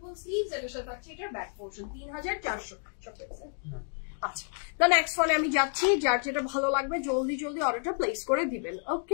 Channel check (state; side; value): silent; right; 58 dB below the other